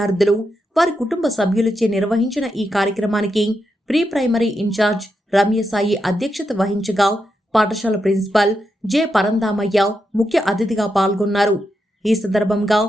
వారి కుటుంబ సభ్యులచే నిర్వహించిన ఈ కార్యక్రమానికి ప్రీ ప్రైమరీ ఇన్ఛార్జ్ రమ్యసాయి అధ్యక్షత వహించగా పాఠశాల ప్రిన్సిపల్ జె పరందామయ్య ముఖ్య అతిథిగా పాల్గొన్నారు. ఈ సందర్భంగా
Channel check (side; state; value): both; normal; correlation 0.85